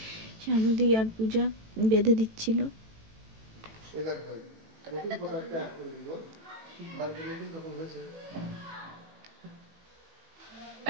শানুদি আর পূজা বেঁধে দিচ্ছিল।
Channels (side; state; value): left; late; 18 ms